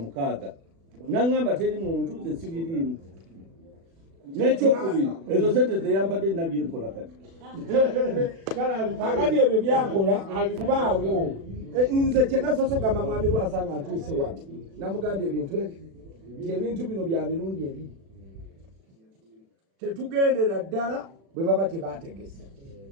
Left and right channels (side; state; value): left; late; 36 ms